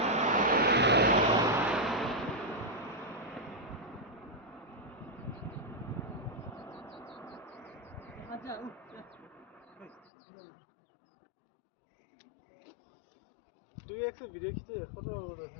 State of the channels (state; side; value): drops out; right; at 10.1 s